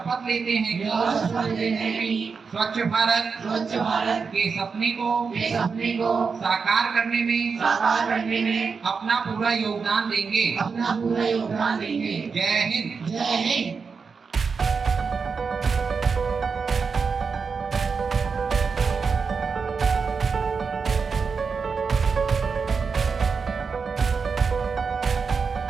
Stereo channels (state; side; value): quieter; left; 5.3 dB